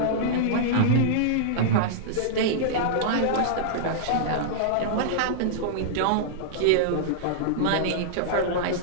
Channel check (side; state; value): both; different; correlation -0.02